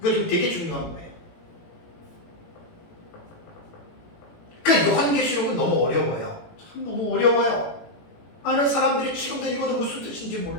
지금 되게 중요한 거예요. 그 요한계시록은 너무 어려워요. 참 너무 어려워요. 많은 사람들이 지금도 읽어도 무슨 뜻인지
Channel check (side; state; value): right; late; 18 ms